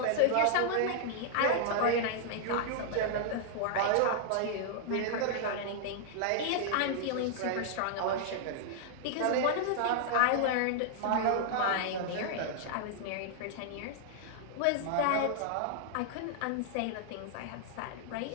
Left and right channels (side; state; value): both; different; correlation -0.01